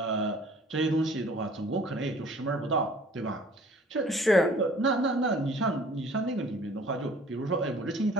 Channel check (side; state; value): both; normal; correlation 0.53